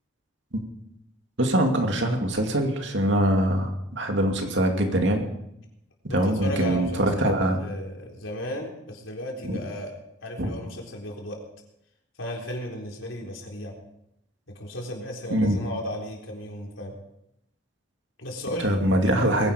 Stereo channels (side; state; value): both; normal; correlation 0.46